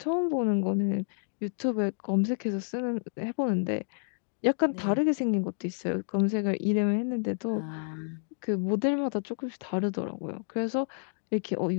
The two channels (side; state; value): right; silent; digital silence